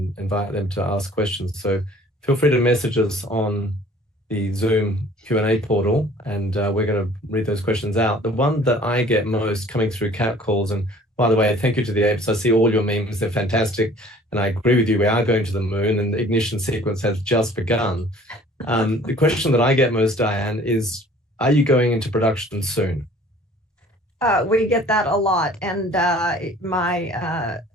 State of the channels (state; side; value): normal; both; correlation 0.52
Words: invite them to ask questions. So feel free to message us on the Zoom Q&A portal, and we're going to read those questions out. The one that I get most coming through Catt calls, and by the way, thank you to the apes. I see all your memes, they're fantastic. And I agree with you, we are going to the moon, and the ignition sequence has just begun. The question that I get most, Diane, is, are you going into production soon? We get that a lot. And my